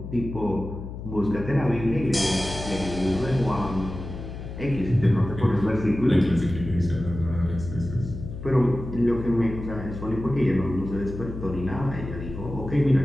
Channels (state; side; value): noise; left; hum, 9 dB below the sound